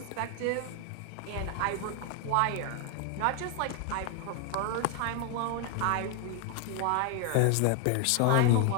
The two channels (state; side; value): different; both; correlation 0.00